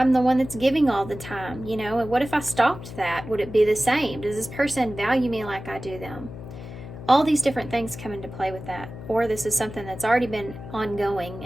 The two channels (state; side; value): noise; left; hum, 12 dB below the sound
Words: the one that's giving all the time? And what if I stopped that? Would it be the same? Does this person value me like I do them? All these different things come into play with that. Or this is something that's already been ongoing